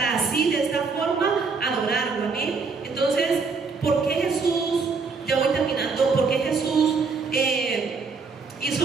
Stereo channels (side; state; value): left; quieter; 4.7 dB